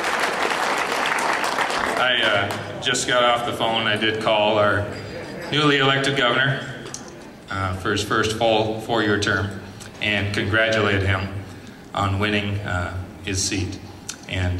I just got off the phone. I did call our newly elected governor for his first full 4-year term and congratulate him on winning his seat. And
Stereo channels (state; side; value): identical; both; correlation 1.00